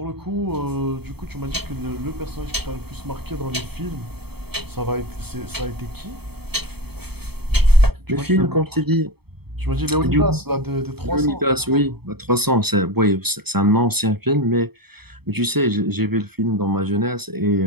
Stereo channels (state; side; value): late; left; 0.97 ms